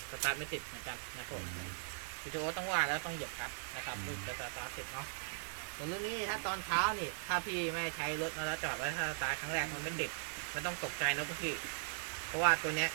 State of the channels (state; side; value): silent; left; digital silence